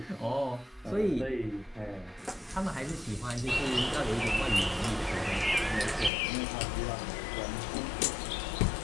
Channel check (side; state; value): right; drops out; at 6.1 s